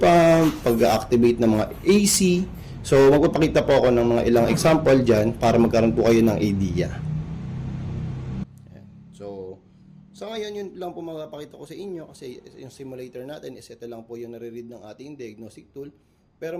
pump, pag-activate ng mga AC. So, magpapakita po ako ng mga ilang example dyan para magkaroon po kayo ng idea. Ayan. So, sa ngayon, yun lang po mapapakita ko sa inyo kasi yung simulator natin is ito lang po yung nare-read ng ating diagnostic tool. Pero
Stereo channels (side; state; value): both; identical; correlation 1.00